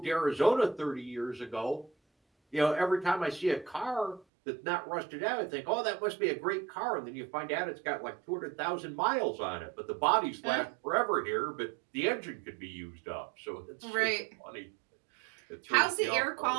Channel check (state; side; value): drops out; left; at 4.2 s